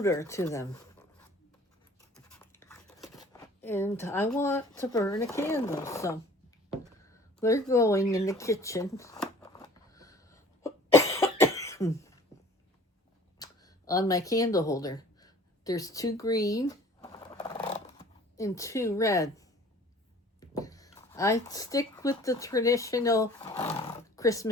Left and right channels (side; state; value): both; normal; correlation 0.49